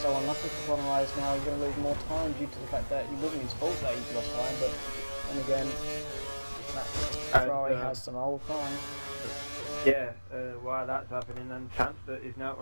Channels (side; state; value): both; inverted; correlation -1.00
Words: so unlucky for Conor Rice now. He's going to lose more time due to the fact that it wasn't his fault that he's lost time, but then again, that Ferrari has some old time. yeah. While that's happening, and Samster is now